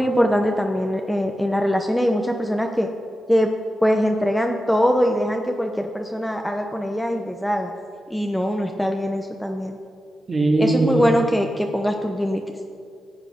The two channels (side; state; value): both; normal; correlation 0.92